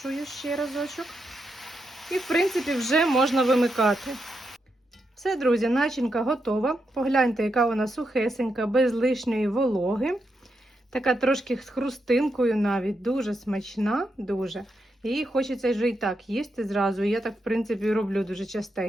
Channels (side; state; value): both; normal; correlation 0.84